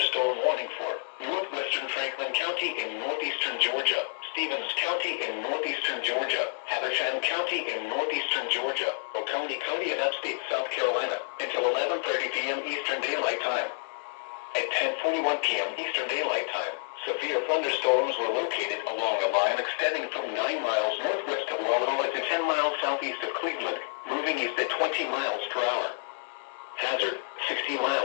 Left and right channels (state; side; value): silent; right; 59 dB below the other